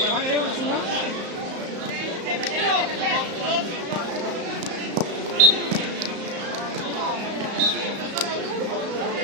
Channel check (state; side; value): late; left; 34 ms